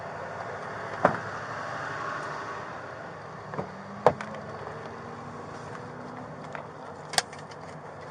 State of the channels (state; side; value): identical; both; correlation 1.00